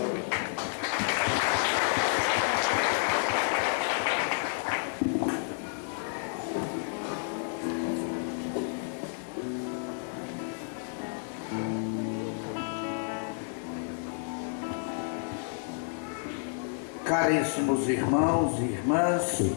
Caríssimos irmãos e irmãs,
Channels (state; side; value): silent; right; 58 dB below the other